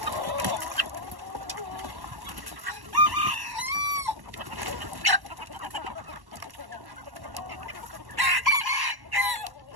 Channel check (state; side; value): late; left; 1.1 ms